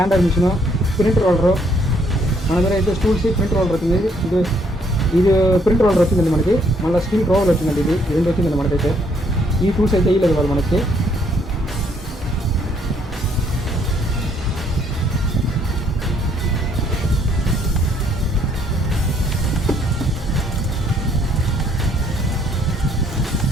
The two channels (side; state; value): both; normal; correlation 0.67